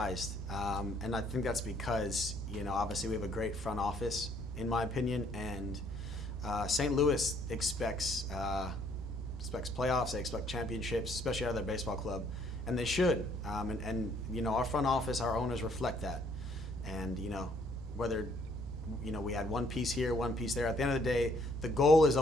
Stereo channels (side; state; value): both; normal; correlation 0.65